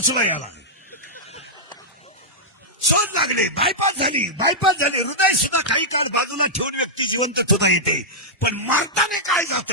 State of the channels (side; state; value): both; normal; correlation -0.09